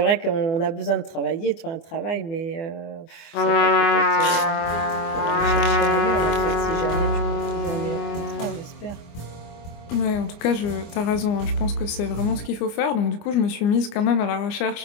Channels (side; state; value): right; late; 24 ms